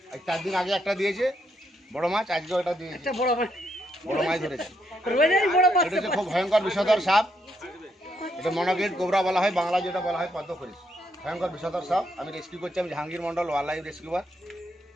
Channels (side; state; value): both; normal; correlation 0.77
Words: 4 দিন আগে একটা দিয়েছে বড় মাছ, আজকেও এটা দিয়েছে বড় মাছ ধরেছে। এটা হচ্ছে খুব ভয়ঙ্কর বিষধর সাপ। এটা মনোকিলিট কোবরা বলা হয়, বাংলা যেটা বলা হয় পদ্ম খরিস। ভয়ঙ্কর বিষধর সাপ। আমি রেস্কিউ করছি, আমি Jahangir Mondal, wildlife rescuer.